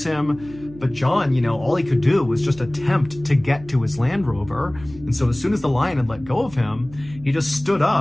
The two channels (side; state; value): right; noise; hum, 19 dB below the sound